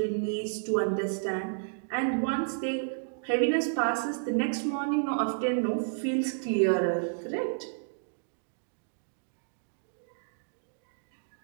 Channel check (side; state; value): left; silent; digital silence